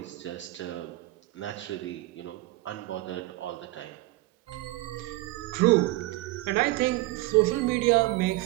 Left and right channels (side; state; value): left; quieter; 19.3 dB